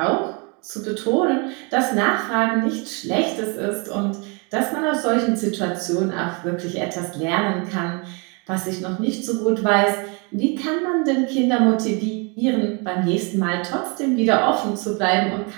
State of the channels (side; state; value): left; quieter; 32.7 dB